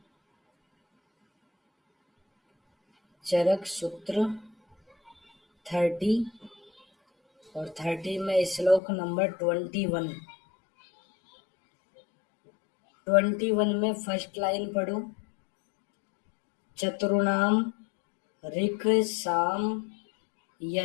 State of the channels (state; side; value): drops out; right; at 8.8 s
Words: चरक सूत्र 30 और 30 में श्लोक नंबर 21। 21 में फर्स्ट लाइन पढ़ो। चतुर्णाम ऋक् साम